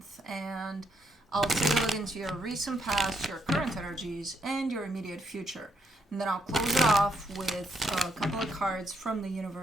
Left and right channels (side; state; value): both; normal; correlation 0.75